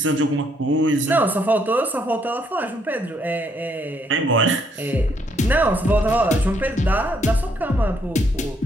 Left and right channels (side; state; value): both; normal; correlation 0.71